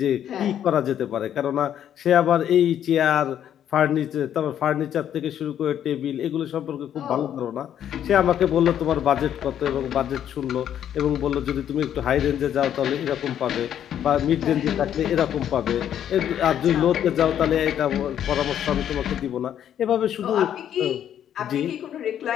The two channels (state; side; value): quieter; right; 10.0 dB